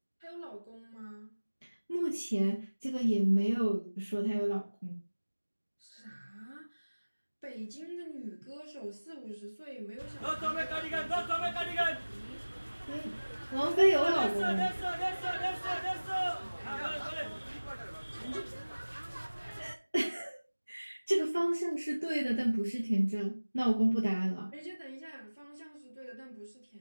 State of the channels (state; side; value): inverted; both; correlation -1.00